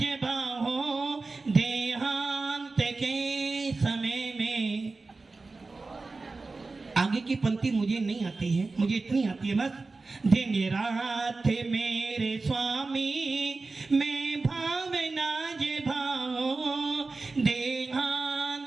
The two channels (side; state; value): left; quieter; 3.7 dB